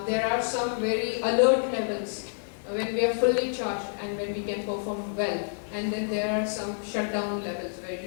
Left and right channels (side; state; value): right; silent; digital silence